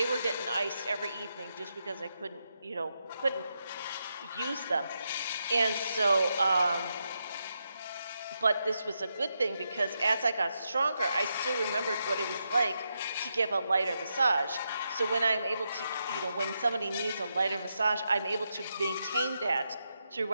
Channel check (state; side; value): inverted; both; correlation -0.84